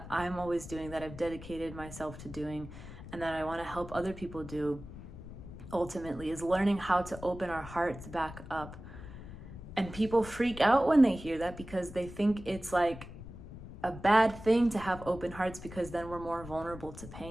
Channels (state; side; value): noise; left; rumble, 13 dB below the sound